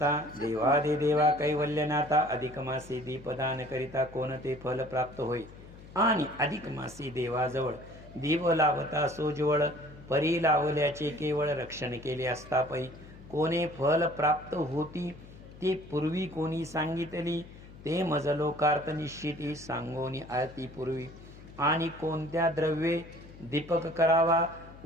देवादिदेवा कैवल्यनाथा, अधिक मासी दीपदान करिता कोणते फल प्राप्त होई, आणि अधिक मासी देवाजवळ दीप लावता सोजवळ, परी लावल्याचे केवळ रक्षण केले असता पै, कोणे फल प्राप्त होती ते पूर्वी कोणी सांगितली, ते मज लोकार्थ निश्चिती सांगोनी आरती पूर्वी। आणि कोणत्या द्रव्ये दीपक करावा,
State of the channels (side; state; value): left; noise; hum, 18 dB below the sound